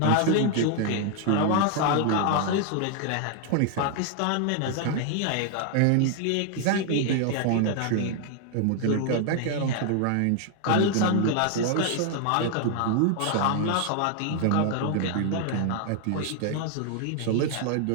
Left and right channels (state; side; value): different; both; correlation 0.00